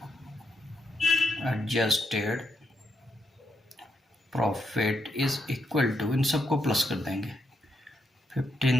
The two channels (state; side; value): normal; both; correlation 0.80